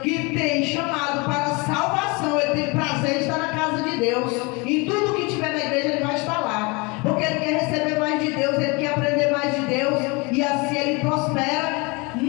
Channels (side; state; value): right; quieter; 27.8 dB